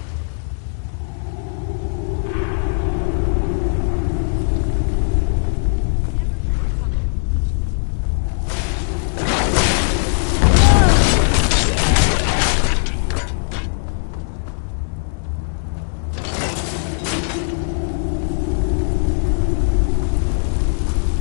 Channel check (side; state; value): right; silent; digital silence